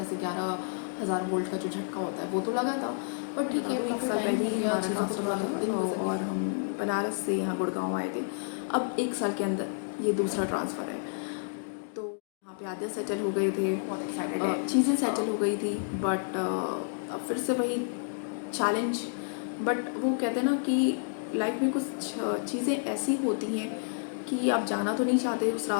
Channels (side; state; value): right; silent; digital silence